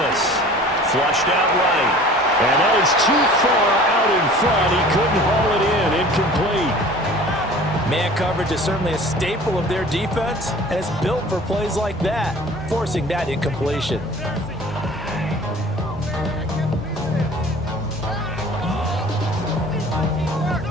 Flushed out right. And that is too far out in front. He couldn't haul it in. Incomplete. Man coverage is certainly a staple of their defense, and it's built for plays like that, forcing that incompletion.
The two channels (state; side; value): normal; both; correlation 0.45